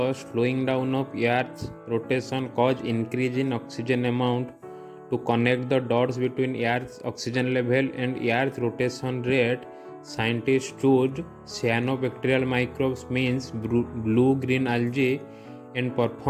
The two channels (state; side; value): identical; both; correlation 1.00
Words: slowing down of Earth's rotation cause increase in oxygen amount. To connect the dots between Earth's oxygen level and Earth's rotation rate, scientists choose cyanobacterial microbes, means blue-green algae, and